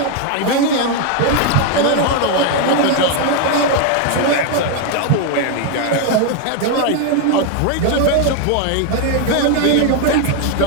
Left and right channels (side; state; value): both; different; correlation 0.01